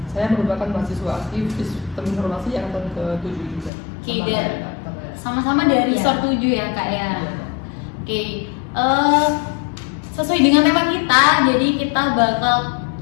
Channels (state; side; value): drops out; right; at 3.7 s